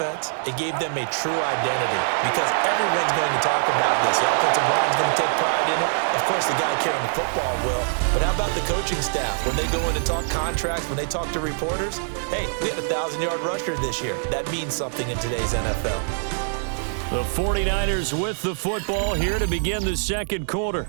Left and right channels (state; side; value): silent; left; digital silence